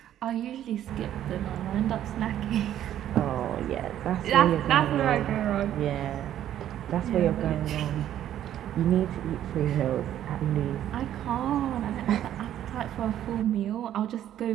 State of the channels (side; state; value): left; quieter; 11.4 dB